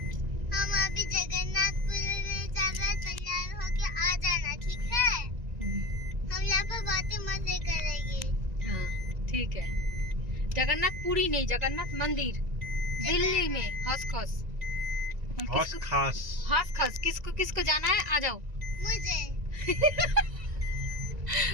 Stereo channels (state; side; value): late; left; 1.9 ms